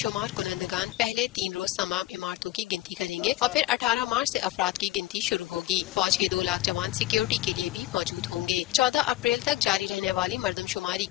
کنندگان پہلے 3 روز تمام عمارتوں کی گنتی کریں گے اور پھر 18 مارچ سے افراد کی گنتی شروع ہوگی۔ فوج کے 2 لاکھ جوان سیکیورٹی کے لیے بھی موجود ہوں گے۔ 14 اپریل تک جاری رہنے والی مردم شماری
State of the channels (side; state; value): right; quieter; 16.0 dB